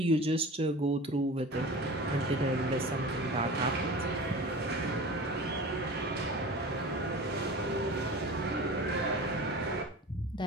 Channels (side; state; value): both; normal; correlation 0.36